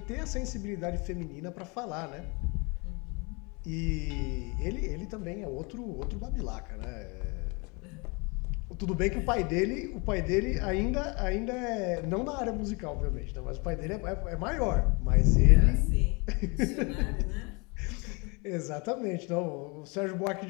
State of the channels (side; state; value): right; quieter; 29.9 dB